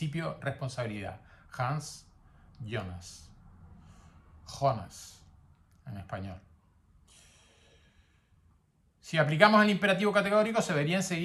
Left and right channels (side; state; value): both; identical; correlation 1.00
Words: responsabilidad. Hans Jonas. Jonas, en español. Si aplicamos el imperativo categórico, se vería